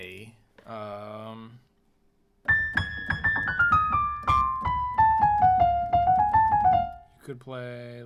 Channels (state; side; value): identical; both; correlation 1.00